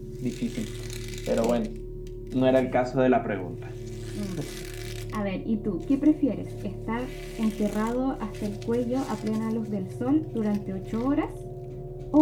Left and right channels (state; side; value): identical; both; correlation 1.00